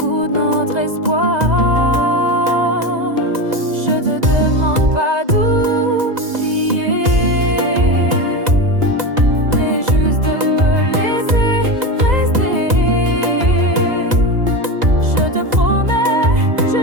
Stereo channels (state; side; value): late; left; 2.0 ms